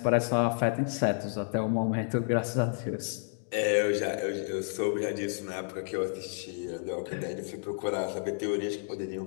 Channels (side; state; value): right; silent; digital silence